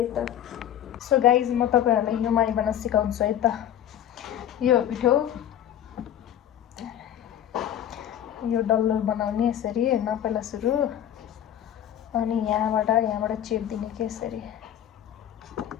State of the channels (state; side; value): quieter; right; 10.8 dB